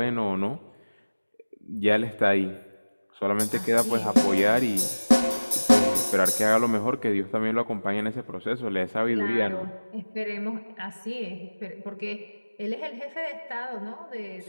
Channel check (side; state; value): both; inverted; correlation -1.00